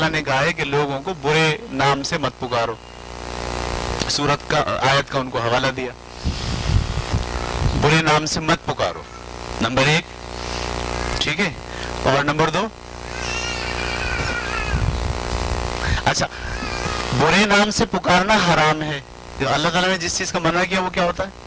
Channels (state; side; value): identical; both; correlation 1.00